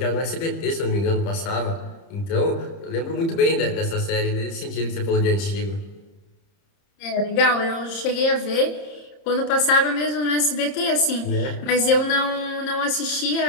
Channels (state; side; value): late; right; 30 ms